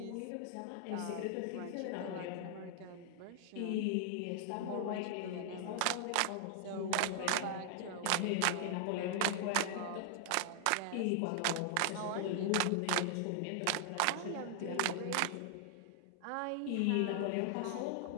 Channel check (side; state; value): both; different; correlation 0.00